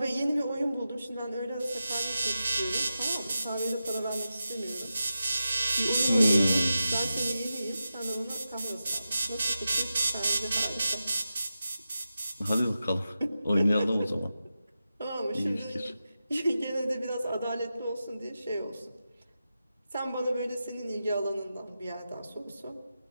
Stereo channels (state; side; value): inverted; both; correlation -0.91